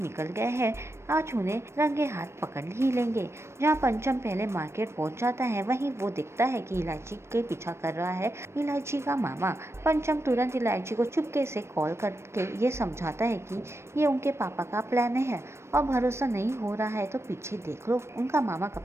गए हैं, आज उन्हें रंगे हाथ पकड़ ही लेंगे। जहाँ पंचम पहले मार्केट पहुंच जाता है वहीं वो दिखता है कि इलायची के पीछा कर रहा है इलायची का मामा। पंचम तुरंत इलायची को चुपके से कॉल करके ये समझाता है कि ये उनके पापा का प्लान है और भरोसा नहीं हो रहा है तो पीछे देख लो, उनका मामा कब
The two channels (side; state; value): left; late; 0.13 ms